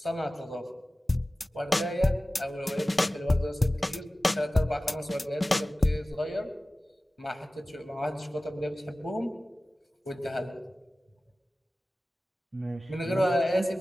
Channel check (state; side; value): normal; both; correlation 0.97